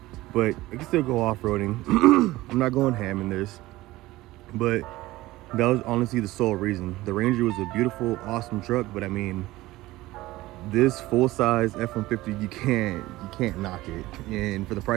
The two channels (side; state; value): left; quieter; 18.1 dB